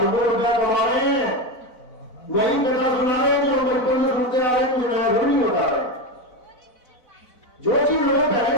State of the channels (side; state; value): right; late; 4.0 ms